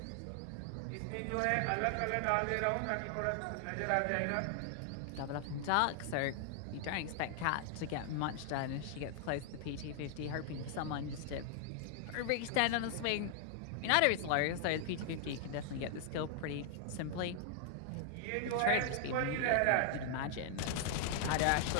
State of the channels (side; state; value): both; different; correlation 0.00